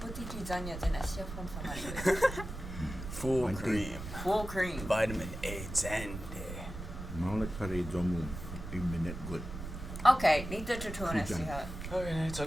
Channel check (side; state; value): right; noise; rumble, 9 dB below the sound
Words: zanya zinasya from famanigo. Full cream. Full cream. Vitamin A 10. Maulik pare jomu 1 minute good. Okay, nito tutunan siya. Okay, it's a